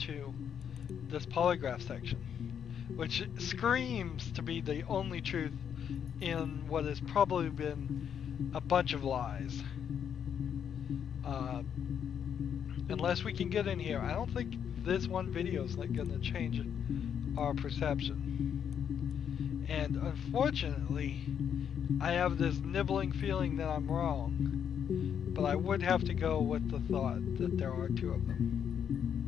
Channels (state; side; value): quieter; right; 8.3 dB